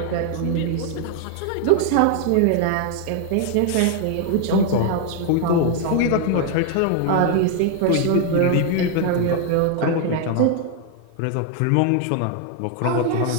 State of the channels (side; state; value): both; different; correlation 0.00